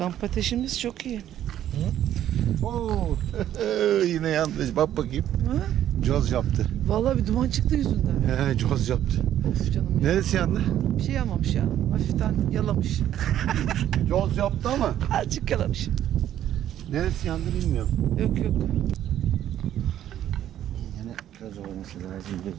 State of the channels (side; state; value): left; quieter; 11.5 dB